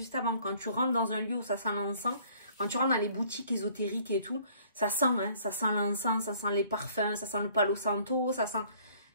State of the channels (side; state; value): both; inverted; correlation -0.58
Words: avant? Quand tu rentres dans un lieu où ça sent l'encens, quand tu rentres dans les boutiques ésotériques et tout, ça sent, hein, ça sent l'encens, ça sent les parfums, ça sent le palo santo, ça sent...